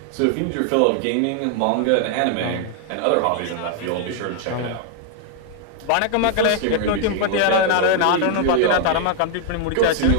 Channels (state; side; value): different; both; correlation 0.00